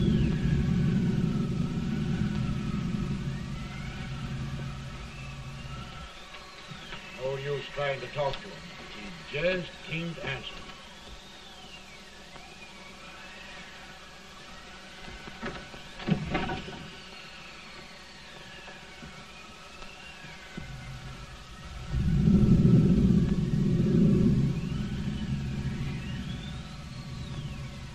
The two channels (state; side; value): identical; both; correlation 1.00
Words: No use trying to talk to him. He just can't answer.